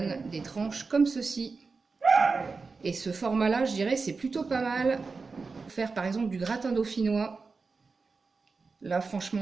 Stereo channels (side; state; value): left; quieter; 4.4 dB